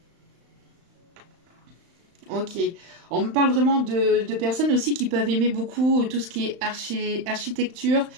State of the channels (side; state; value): left; late; 35 ms